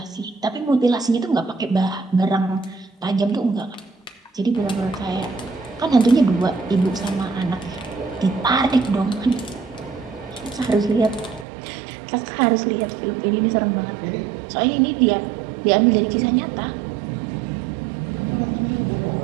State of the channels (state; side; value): drops out; left; at 11.5 s